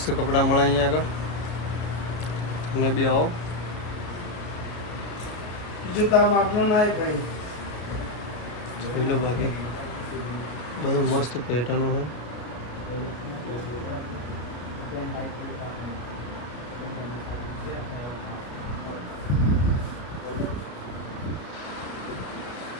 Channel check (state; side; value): late; right; 33 ms